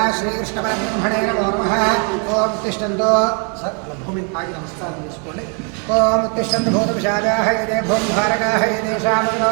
श्रीकृष्णपरब्रह्मणे नमो नमः। ओम तिष्ठन्तु भूमि आगे नमस्कारं చేసుకోండి। ओम तिष्ठन्तु भूतपिशाचाः ये भूमभारकाः येषां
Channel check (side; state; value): left; quieter; 38.2 dB